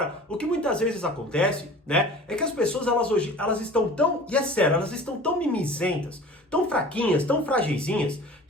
o que muitas vezes acontece, né? É que as pessoas, elas estão tão, e é sério, elas estão tão mimizentas, tão fraquinhas, tão fragilzinhas,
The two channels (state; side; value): normal; both; correlation 0.42